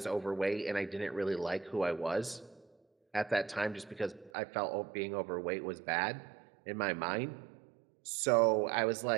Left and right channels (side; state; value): left; drops out; at 4.3 s